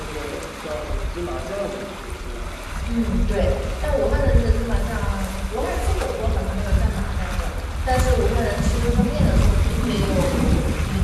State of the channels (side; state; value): both; identical; correlation 1.00